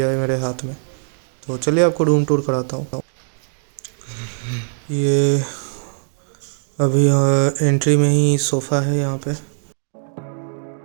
है मेरे हाथ में। तो चलिए आपको रूम टूर कराता हूँ। ये अभी एंट्री में ही सोफ़ा है यहाँ पे।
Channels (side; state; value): left; silent; digital silence